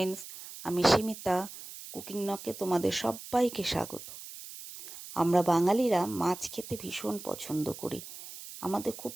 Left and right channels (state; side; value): noise; right; hiss, 13 dB below the sound